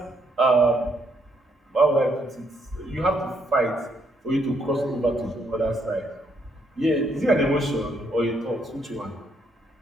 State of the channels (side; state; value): both; normal; correlation 0.73